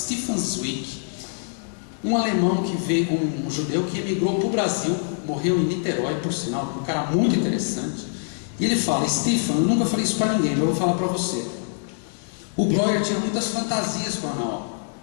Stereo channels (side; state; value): right; silent; digital silence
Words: Zweig, um alemão que veio, um judeu que emigrou para o Brasil, morreu em Niterói, por sinal, um cara muito interessante. E ele fala: Stefan, eu nunca falei isso para ninguém, mas eu vou falar para você. O Breuer tinha muitas fantasias com a Ana.